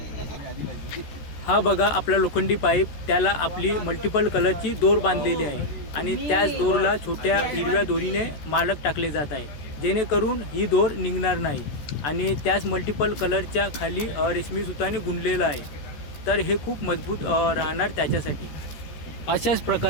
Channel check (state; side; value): late; right; 14 ms